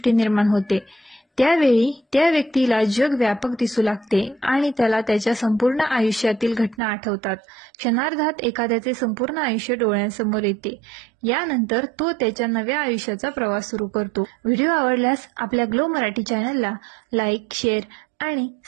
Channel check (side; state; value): left; drops out; at 6.8 s